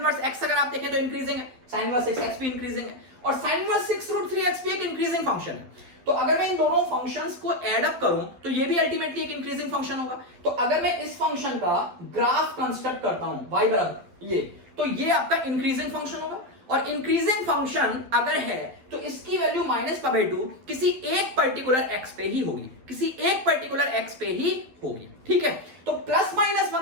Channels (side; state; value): left; late; 12 ms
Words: x अगर आप देखें तो इंक्रीजिंग है, sin इनवर्स 6x भी इंक्रीजिंग है, और sin इनवर्स 6√3x भी एक इंक्रीजिंग फंक्शन है। तो अगर मैं इन दोनों फंक्शंस को ऐड अप करूं तो ये भी अल्टीमेटली एक इंक्रीजिंग फंक्शन होगा। तो अगर मैं इस फंक्शन का ग्राफ कंस्ट्रक्ट करता हूं y बराबर ये, तो ये आपका इंक्रीजिंग फंक्शन होगा, और इंक्रीजिंग फंक्शन अगर है तो इसकी वैल्यू -π/2 किसी एक पर्टिकुलर x पे ही होगी, किसी एक पर्टिकुलर x पे ही होगी। ठीक है, तो